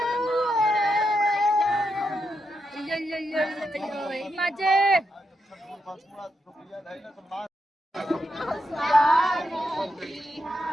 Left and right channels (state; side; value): normal; both; correlation 0.84